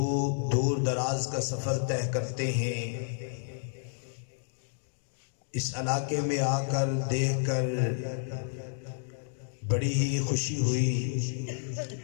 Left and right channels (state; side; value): silent; right; digital silence